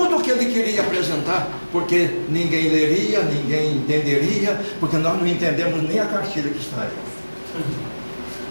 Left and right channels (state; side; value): inverted; both; correlation -1.00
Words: o que ele queria apresentar, porque ninguém leria, ninguém entenderia, porque nós não entendemos nem a cartilha que está aí.